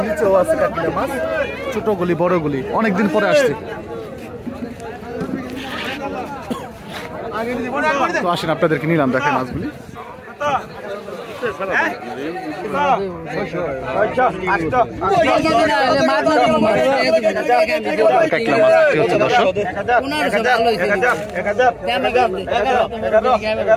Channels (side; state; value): both; identical; correlation 1.00